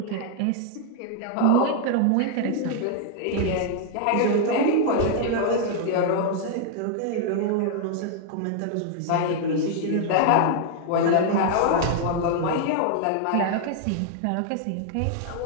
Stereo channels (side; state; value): both; different; correlation 0.00